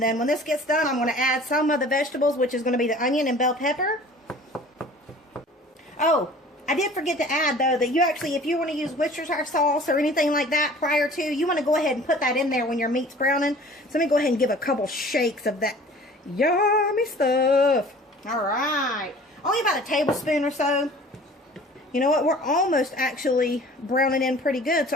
then when this gets done, I'm going to add some of the vegetables, which is going to be the onion and bell pepper. Oh, I did forget to add, though, that you actually, if you want to use Worcestershire sauce or anything like that prior to, you want to go ahead and put that in there when your meat's browning. So let me go ahead and give a couple shakes of that yummy stuff. All right. Only about a tablespoon or so. You know what? We're almost actually browning in pretty good.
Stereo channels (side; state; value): both; normal; correlation 0.47